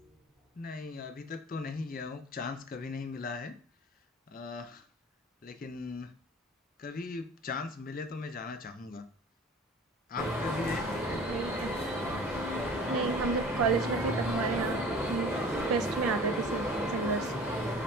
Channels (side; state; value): both; normal; correlation 0.43